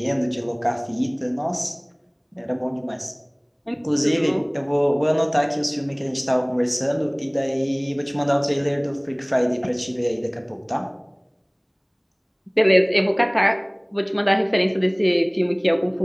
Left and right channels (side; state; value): both; identical; correlation 1.00